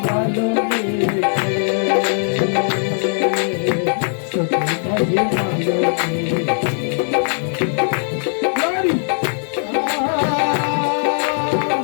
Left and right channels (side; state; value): right; silent; digital silence